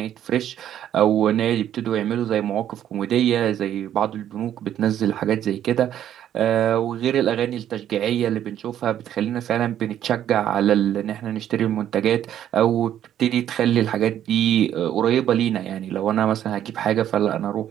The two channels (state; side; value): quieter; left; 10.8 dB